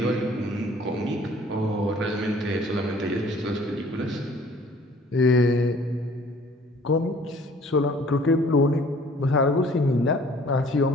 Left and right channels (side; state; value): both; normal; correlation 0.54